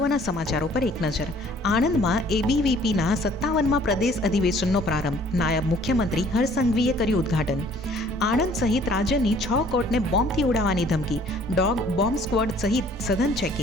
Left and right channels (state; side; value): normal; both; correlation 0.56